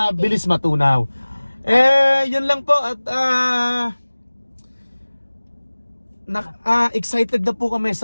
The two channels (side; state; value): both; inverted; correlation -1.00